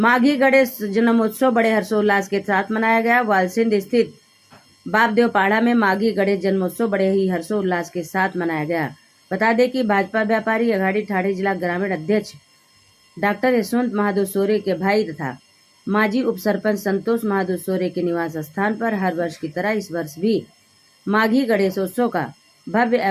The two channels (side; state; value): both; identical; correlation 1.00